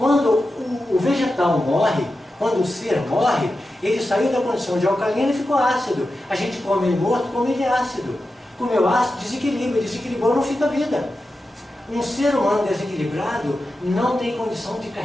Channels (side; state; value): both; normal; correlation 0.91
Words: o vegetal morre, quando o ser morre, ele saiu da condição de alcalino e ficou ácido. A gente come ele morto, come ele ácido. Comeu ácido, desequilibra, desequilibrou, não fica vida. Um ser humano desequilibrado não tem condição de